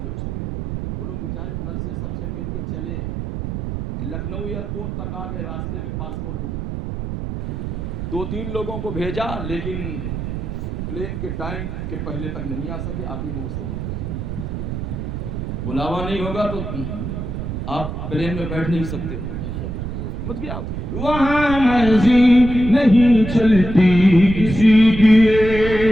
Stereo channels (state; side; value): noise; right; rumble, 5 dB below the sound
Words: تھے اس میں، وہ لوگ بیچارے گھر سے سب سے مل کے چلے، لکھنؤ ایئرپورٹ تک آ گئے، راستے میں پاسپورٹ گم ہو گیا۔ 2-3 لوگوں کو بھیجا لیکن پلین کے ٹائم کے پہلے تک نہیں آ سکے، آخر میں وہ سب واپس چلے گئے۔ بلاوا نہیں ہوگا تو آپ پلین میں بیٹھ نہیں سکتے، سمجھ گئے آپ؟ وہاں مرضی نہیں چلتی کسی کی،